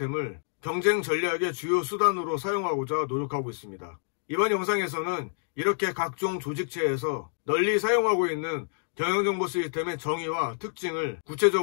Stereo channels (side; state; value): right; silent; digital silence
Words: 경쟁 전략의 주요 수단으로 사용하고자 노력하고 있습니다. 이번 영상에서는 이렇게 각종 조직체에서 널리 사용하고 있는 경영정보 시스템의 정의와 특징을